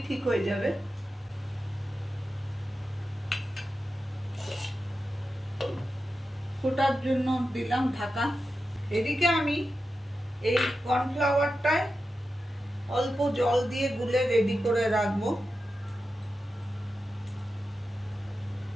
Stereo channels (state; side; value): normal; both; correlation 0.91